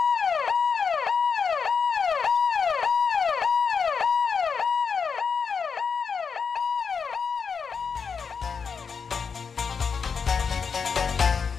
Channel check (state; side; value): quieter; right; 5.9 dB